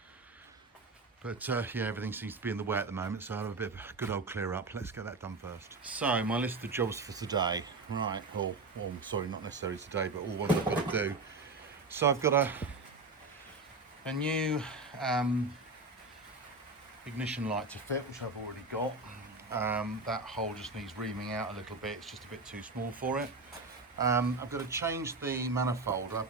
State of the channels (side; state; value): left; quieter; 3.4 dB